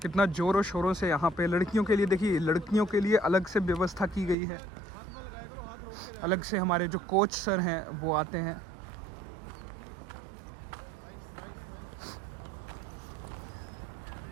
कितना ज़ोरों शोरों से यहाँ पे लड़कियों के लिए, देखिए लड़कियों के लिए अलग से व्यवस्था की गई है। अलग से हमारे जो कोच सर हैं वो आते हैं।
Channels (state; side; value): drops out; left; at 4.4 s